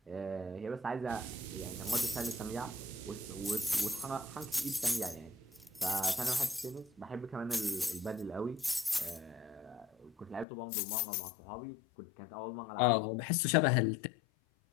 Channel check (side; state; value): right; drops out; at 10.5 s